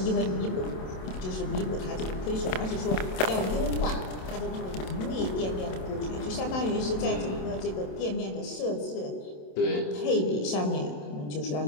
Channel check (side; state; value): right; late; 27 ms